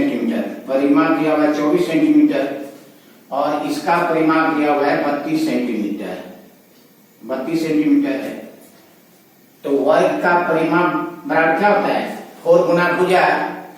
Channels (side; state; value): both; identical; correlation 1.00